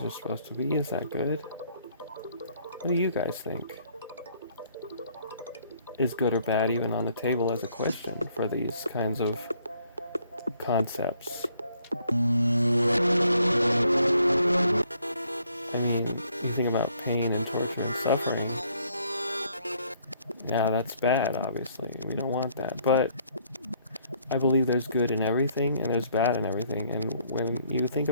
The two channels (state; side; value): inverted; both; correlation -0.66